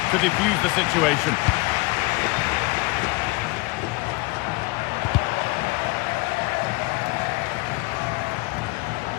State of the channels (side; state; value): right; quieter; 23.9 dB